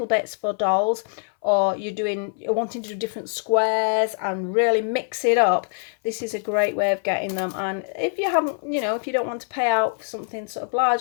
bits for dolls, or you're wanting to do different squares and really mix it up, this is a great way of getting them. And if you haven't, if you don't want to pay out for something sort of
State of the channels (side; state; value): right; silent; 63 dB below the other